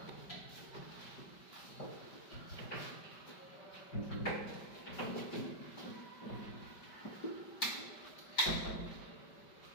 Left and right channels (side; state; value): right; late; 5.1 ms